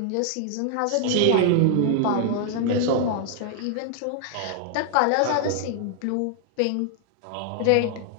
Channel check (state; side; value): different; both; correlation 0.00